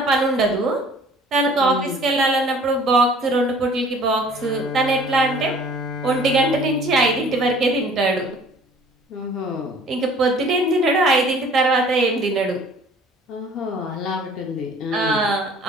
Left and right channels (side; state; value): both; normal; correlation 0.51